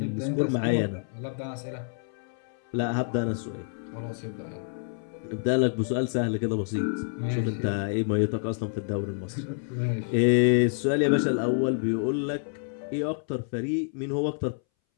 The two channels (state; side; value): silent; right; 59 dB below the other